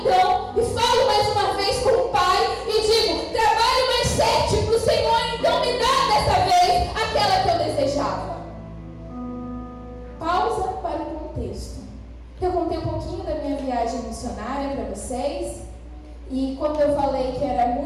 e falo mais uma vez com o pai e digo: trabalhe mais 7 para o Senhor, então me dá dessa vez aquela que eu desejava. Pausa para o contexto. Eu contei um pouquinho da minha viagem missionária para vocês. E quando eu falei que era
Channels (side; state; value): both; identical; correlation 1.00